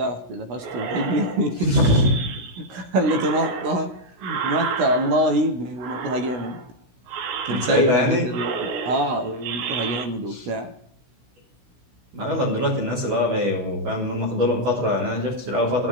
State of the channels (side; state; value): left; late; 16 ms